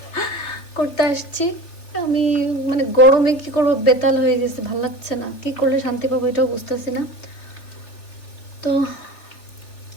করতে আসছি। আমি মানে গরমে কি করবো, বেতাল হয়ে গেছে, ভালো লাগছে না, কি করলে শান্তি পাবো এটাও বুঝতেছি না। তো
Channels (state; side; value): late; right; 3.4 ms